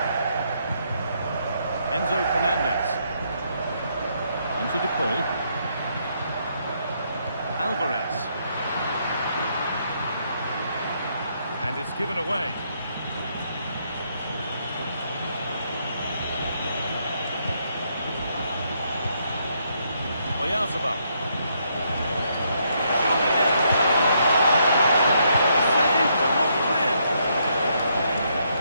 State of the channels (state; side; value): inverted; both; correlation -0.74